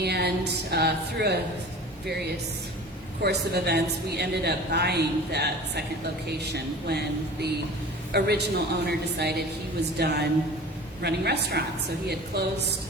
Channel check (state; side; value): normal; both; correlation 0.40